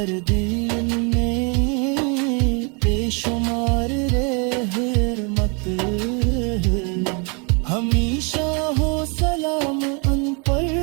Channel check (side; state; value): left; quieter; 34.5 dB